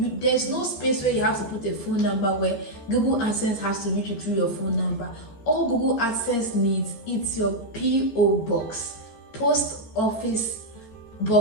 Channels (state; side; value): late; right; 14 ms